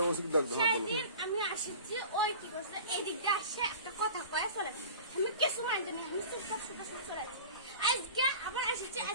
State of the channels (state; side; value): inverted; both; correlation -0.39